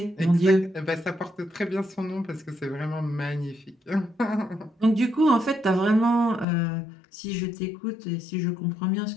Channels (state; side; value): drops out; right; at 6.5 s